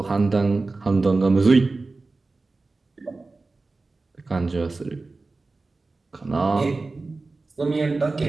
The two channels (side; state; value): left; quieter; 3.6 dB